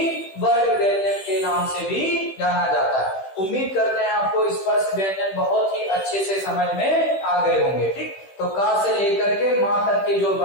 वर्ग व्यंजन के नाम से भी जाना जाता है। उम्मीद करते हैं आपको स्पर्श व्यंजन बहुत ही अच्छे से समझ में आ गए होंगे। ठीक, तो का से लेकर के मा तक के जो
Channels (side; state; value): right; late; 15 ms